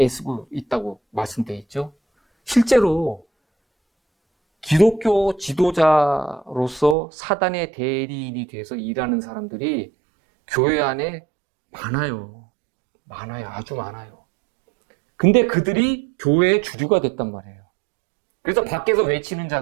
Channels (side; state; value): left; drops out; at 7.0 s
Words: 있다고 말씀되어 있죠. 실제로 기독교 지도자로서 사단의 대리인이 돼서 일하는 사람들이 교회 안에 많아요. 아주 많아요. 근데 그들이 교회의 주류가 됐단 말이에요. 그래서 밖에서 외치는